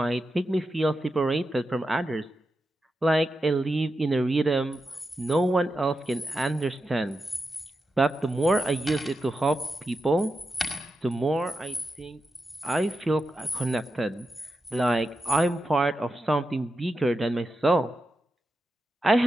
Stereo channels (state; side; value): normal; both; correlation 0.89